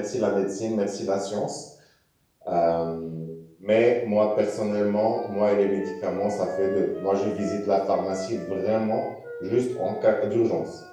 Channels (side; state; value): both; identical; correlation 1.00